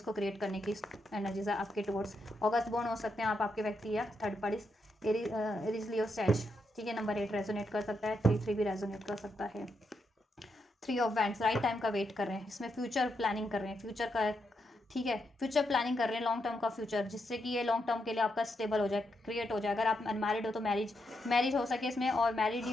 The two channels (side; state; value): both; normal; correlation 0.82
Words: क्रिएट करने की एनर्जीज है आपके टुवर्ड्स। अगस्त बोर्न हो सकते हैं आप, आपके व्यक्ति या थर्ड पार्टीज, एरीज लियो सैज, ठीक है। नंबर 8 रेजोनेट कर सकता है, 3 भी रेजोनेट कर सकता है। 3 ऑफ वैंड्स, राइट टाइम का वेट कर रहे हैं, इसमें फ्यूचर प्लानिंग कर रहे हैं, फ्यूचर का, ठीक है, फ्यूचर प्लानिंग कर रहे हैं, लॉन्ग टर्म का फ्यूचर, जिससे कि ये लॉन्ग टर्म के लिए आपका स्टेबल हो जाए, क्रिएट हो जाए। अगर आप अनमैरिड हो तो मैरिज हो सके इसमें, और मैरिड ही